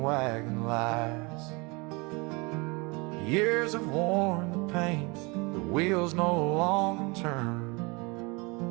wagon lies. Years have worn the paint, the wheels no longer turn,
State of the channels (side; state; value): left; quieter; 27.7 dB